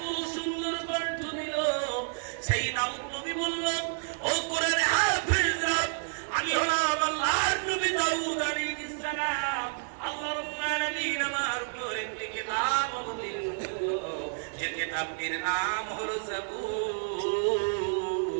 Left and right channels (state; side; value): silent; left; 58 dB below the other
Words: সুন্দর কণ্ঠ দিল। সেই দাউদ নবী বলল, ও কোরআনে হাফেজরা, আমি হলাম আল্লাহর নবী দাউদ আলাইহিস সালাম। আল্লাহ রাব্বুল আলামিন আমার উপর একটি কিতাব অবতীর্ণ করলো, যে কিতাবটির নাম হলো জবুর।